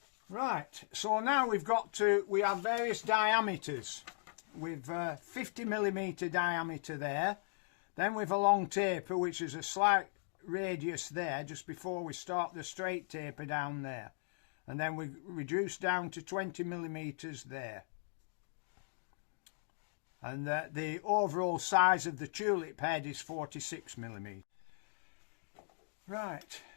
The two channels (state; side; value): silent; right; digital silence